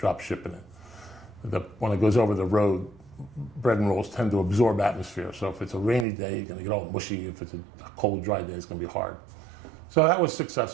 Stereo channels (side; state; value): left; drops out; at 6.1 s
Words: it. When it goes over the road, bread and rolls tend to absorb atmosphere. So if it's a rainy day, you're going to get all mushy. If it's a cold, dry day, it's going to be hard. So that was